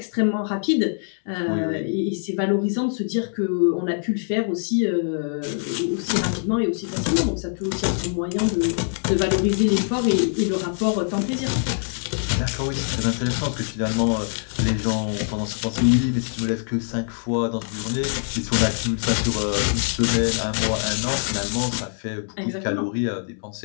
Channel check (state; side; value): silent; right; 62 dB below the other